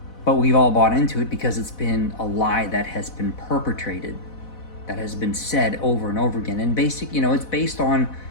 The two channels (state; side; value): late; right; 4.0 ms